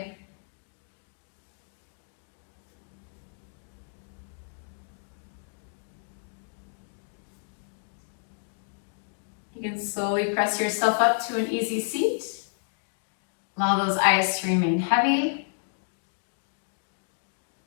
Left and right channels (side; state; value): right; silent; digital silence